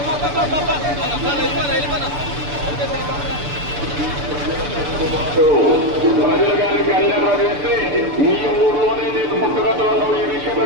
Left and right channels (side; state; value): left; late; 6.9 ms